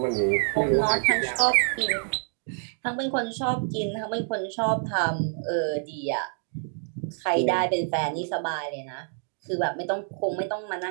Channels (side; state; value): left; silent; 60 dB below the other